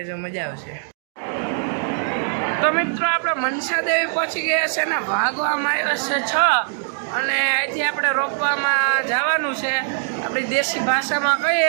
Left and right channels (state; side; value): silent; left; digital silence